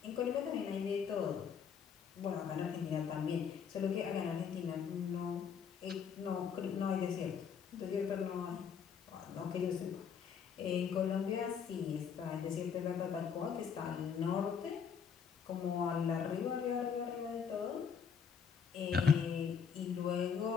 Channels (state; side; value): quieter; right; 6.9 dB